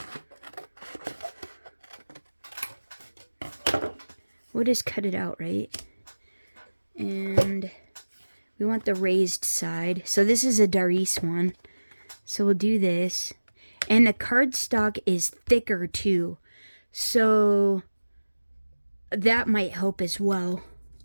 We'll just cut it out, right? And... we want the raised side. So this is a Darice one. So we'll do this. And the cardstock is thicker too. So that might help as well.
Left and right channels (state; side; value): inverted; both; correlation -1.00